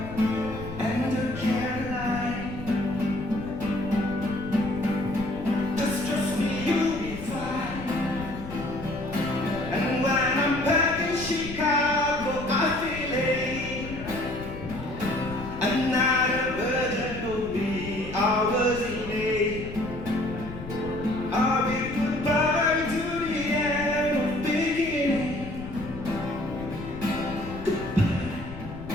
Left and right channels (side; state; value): left; noise; rumble, 11 dB below the sound